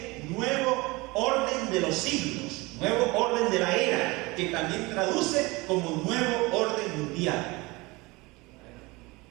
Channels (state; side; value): quieter; left; 23.5 dB